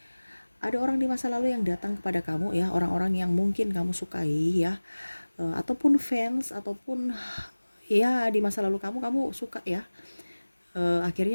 ada orang di masa lalu yang datang kepada kamu ya, orang-orang yang mungkin kamu sukai ya, ataupun fans, ataupun ya di masa lalu kamu suka ya.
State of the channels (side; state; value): both; inverted; correlation -1.00